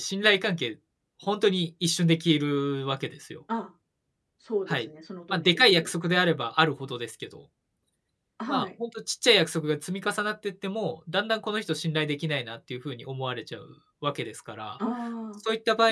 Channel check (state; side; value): identical; both; correlation 1.00